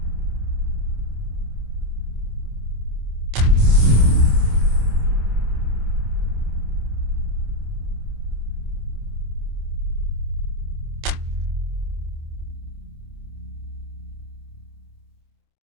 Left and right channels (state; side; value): late; left; 26 ms